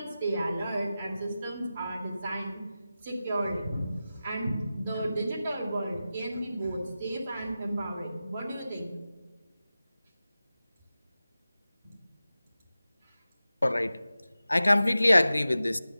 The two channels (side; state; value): both; inverted; correlation -0.94